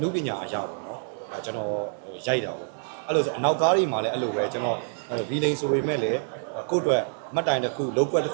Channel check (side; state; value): left; silent; digital silence